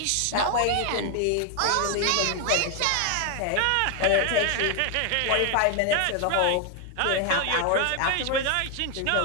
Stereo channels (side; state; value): both; different; correlation 0.01